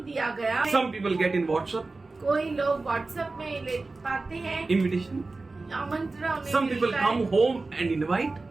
दिया गया। Some people get in WhatsApp कोई लोग व्हाट्सएप में ले पाते हैं invitation. आमंत्रण उन्हें Some people मिलता है। come home and invite.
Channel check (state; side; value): quieter; left; 3.5 dB